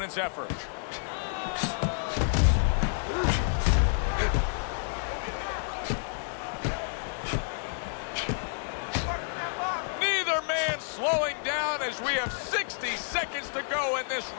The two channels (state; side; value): silent; right; digital silence